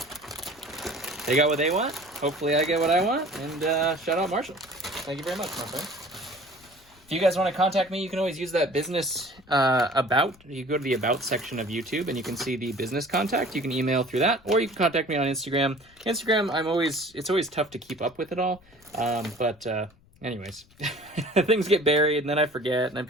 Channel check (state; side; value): noise; left; rumble, 28 dB below the sound